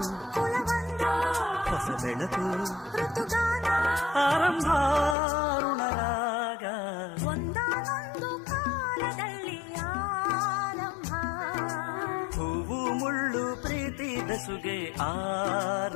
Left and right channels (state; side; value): drops out; right; at 5.2 s